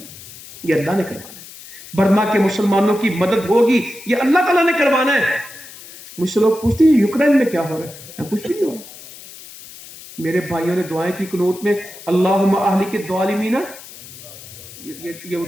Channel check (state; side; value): noise; left; hiss, 17 dB below the sound